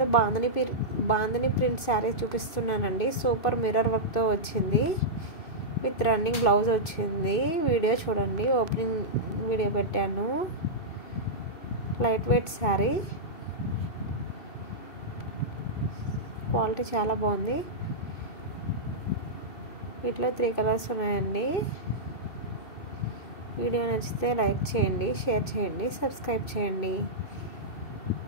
బాందిని ప్రింట్ శారీ చూపిస్తున్నానండి. సూపర్ మిర్రర్ వర్క్తో వచ్చింది, విత్ రన్నింగ్ బ్లౌజ్ వచ్చింది. వీడియో చూడండి, ఓపెనింగ్ వీడియో పెట్టాను. లైట్ వెయిట్ శారీ, క్వాలిటీ చాలా బాగుంది. వీటిలో 3 కలర్స్ ఉన్నాయండి. వీడియో నచ్చితే లైక్ చేయండి, షేర్ చేయండి, సబ్స్క్రైబ్ చేయండి.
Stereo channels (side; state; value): right; late; 2.6 ms